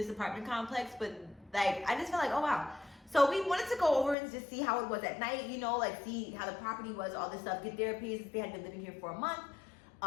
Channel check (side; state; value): right; drops out; at 4.2 s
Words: apartment complex, but like, I just felt like, oh wow. So we wanted to go over and just see how it was at night, you know, like see how the property was, all this stuff, get their opinions since they had been living here for a month.